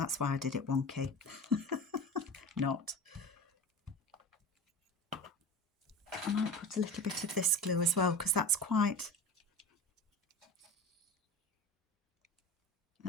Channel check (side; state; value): both; normal; correlation 0.31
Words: why I did it wonky. Not. I might put a little bit of this glue as well because that's quite